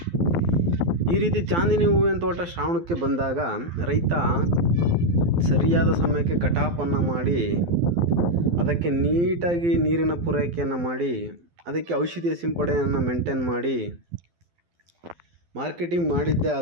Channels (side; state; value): left; late; 12 ms